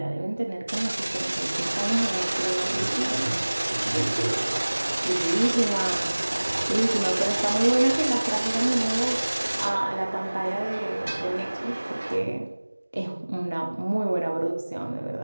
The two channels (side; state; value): both; inverted; correlation -1.00